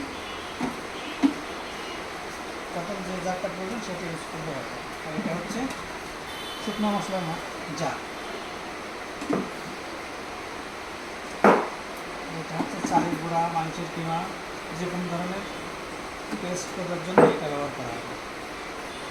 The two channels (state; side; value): identical; both; correlation 1.00